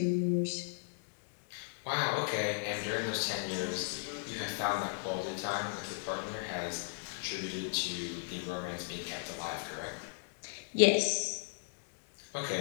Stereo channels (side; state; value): right; silent; digital silence